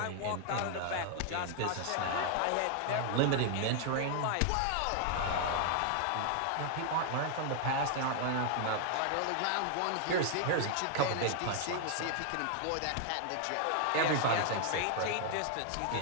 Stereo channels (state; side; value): different; both; correlation 0.00